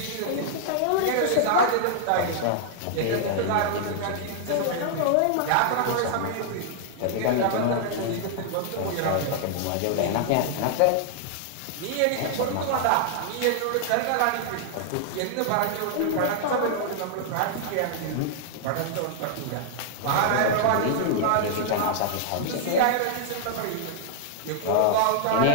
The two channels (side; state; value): both; different; correlation -0.01